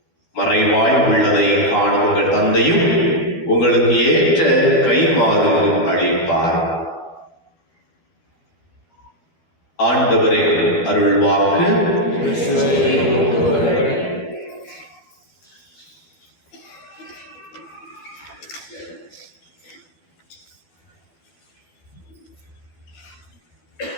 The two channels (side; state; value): right; late; 12 ms